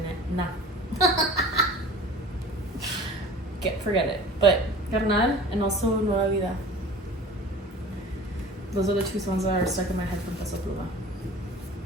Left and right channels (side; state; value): both; normal; correlation 0.41